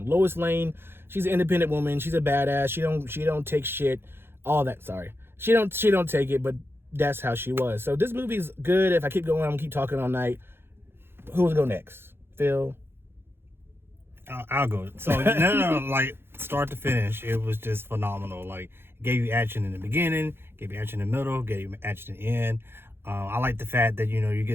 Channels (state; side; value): late; left; 0.11 ms